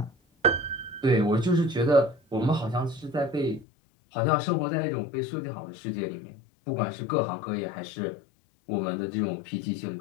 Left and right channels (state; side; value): drops out; right; at 3.7 s